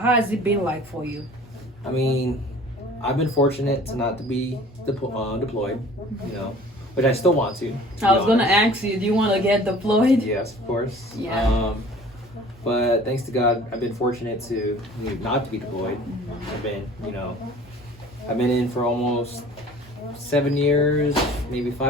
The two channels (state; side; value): normal; both; correlation 0.48